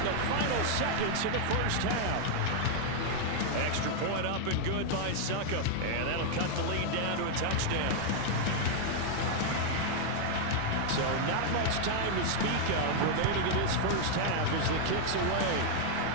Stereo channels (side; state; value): both; different; correlation 0.00